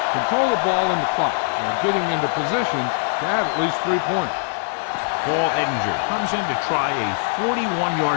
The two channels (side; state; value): right; silent; digital silence